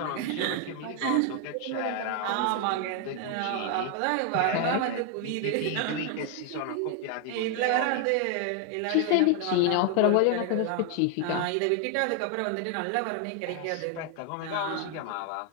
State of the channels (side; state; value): both; different; correlation 0.00